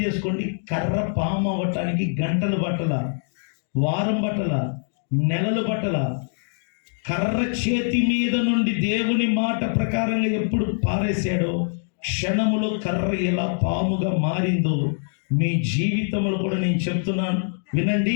చేసుకోండి, కర్ర పాము అవ్వటానికి గంటలు పట్టల, వారం పట్టల, నెలలు పట్టల. కర్ర చేతి మీద నుండి దేవుని మాట ప్రకారంగా ఎప్పుడు పారేశాడో, క్షణములో కర్ర ఎలా పాముగా మారిందో మీ జీవితంలో కూడా నేను చెప్తున్నాను. వినండి,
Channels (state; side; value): silent; right; digital silence